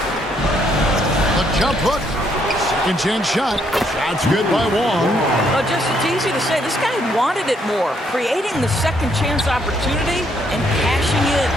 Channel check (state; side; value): normal; both; correlation 0.71